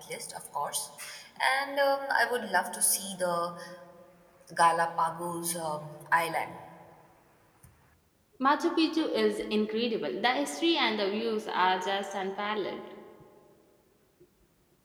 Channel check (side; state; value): both; identical; correlation 1.00